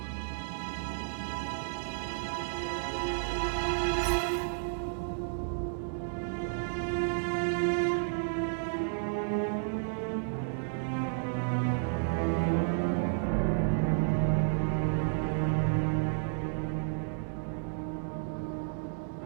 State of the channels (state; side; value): silent; left; digital silence